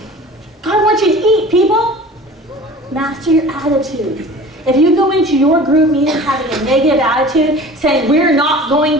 wants you to eat, people. Master your attitude. If you go into your group meeting having a negative attitude, saying we're not going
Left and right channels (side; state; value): both; normal; correlation 0.41